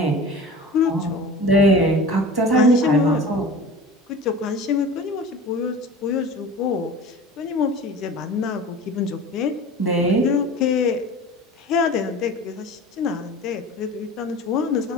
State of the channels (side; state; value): both; normal; correlation 0.37